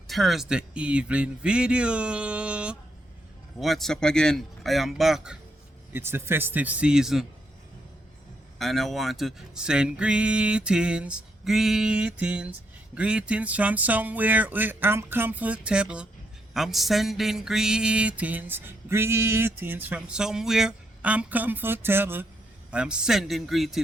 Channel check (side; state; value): both; normal; correlation 0.78